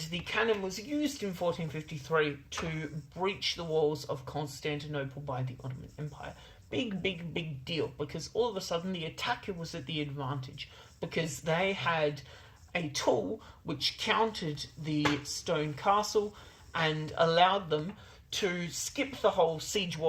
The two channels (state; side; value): identical; both; correlation 1.00